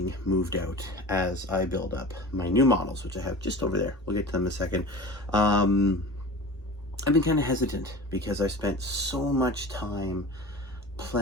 moved out as I build up my new models, which I have just over there. We'll get to them in a second. I've been kind of hesitant because I spent so much time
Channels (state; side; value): normal; both; correlation 0.36